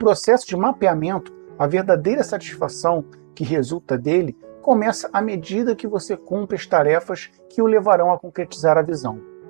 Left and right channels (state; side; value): silent; left; digital silence